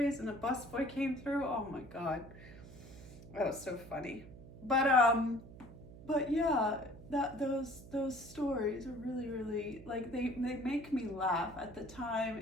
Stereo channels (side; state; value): right; noise; hum, 16 dB below the sound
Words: and a busboy came through. Oh my God. That was so funny. But yeah, those stories are really like they make me laugh. At the